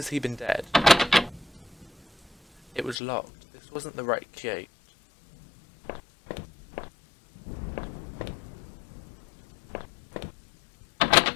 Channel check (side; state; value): right; drops out; at 3.0 s